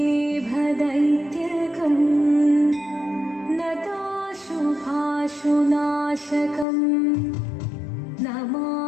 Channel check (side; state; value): right; drops out; at 6.7 s